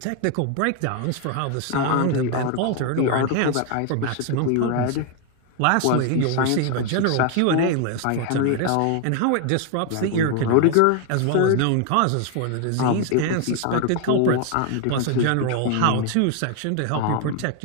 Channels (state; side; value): different; both; correlation 0.01